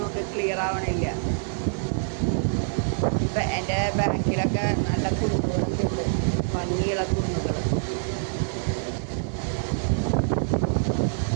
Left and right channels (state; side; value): silent; left; digital silence